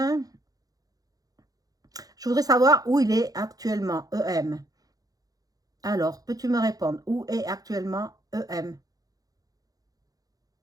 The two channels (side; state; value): left; late; 0.18 ms